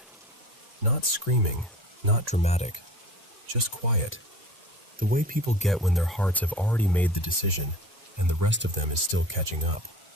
Not screaming, not dramatic, just quiet. The way people get when their hearts have already made the decision and the rest of them is still catching up.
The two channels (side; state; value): both; normal; correlation 0.41